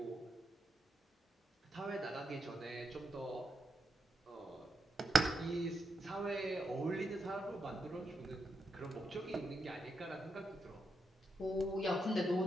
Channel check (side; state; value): both; normal; correlation 0.83